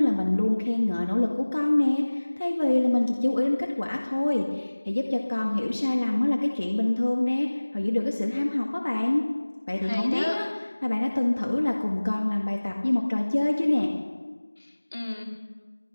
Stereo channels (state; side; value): inverted; both; correlation -1.00